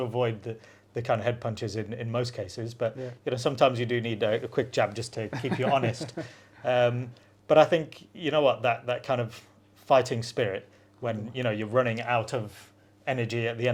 avoid the kind of head punches in most cases, but sometimes you do need a quick jab just to keep you honest. But I think that kind of fighting spirit when you're running out of energy at the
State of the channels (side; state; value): both; identical; correlation 1.00